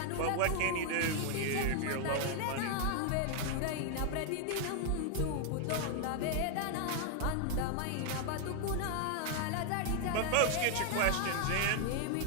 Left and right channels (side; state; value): both; different; correlation 0.00